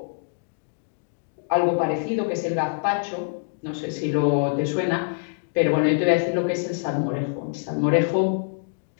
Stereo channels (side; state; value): right; silent; digital silence